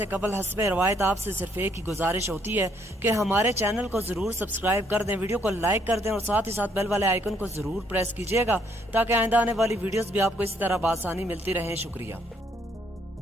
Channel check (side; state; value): both; normal; correlation 0.69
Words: قبل حسب روایت آپ سے صرف ایک ہی گزارش ہوتی ہے کہ ہمارے چینل کو ضرور سبسکرائب کر دیں، ویڈیو کو لائک کر دیں اور ساتھ ہی ساتھ بیل والے آئیکن کو ضرور پریس کیجیے گا تاکہ آئندہ آنے والی ویڈیوز بھی آپ کو اسی طرح بآسانی ملتی رہیں۔ شکریہ۔